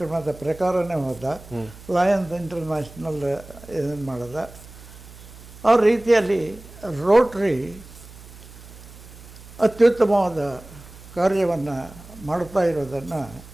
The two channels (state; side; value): noise; right; hum, 19 dB below the sound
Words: ಪ್ರಕಾರನೇ ಹೋದ. ಲಯನ್ಸ್ ಇಂಟರ್ನ್ಯಾಷನಲ್ ಇದನ್ನು ಮಾಡಿದ. ಆ ರೀತಿಯಲ್ಲಿ ರೋಟರಿ ಅತ್ಯುತ್ತಮವಾದ ಕಾರ್ಯವನ್ನು ಮಾಡ್ತಾ ಇರೋದನ್ನು